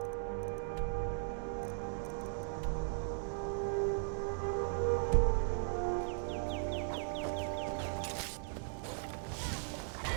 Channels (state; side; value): silent; left; digital silence